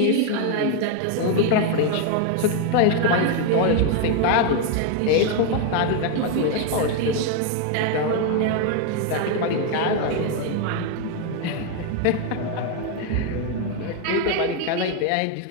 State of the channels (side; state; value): both; different; correlation 0.01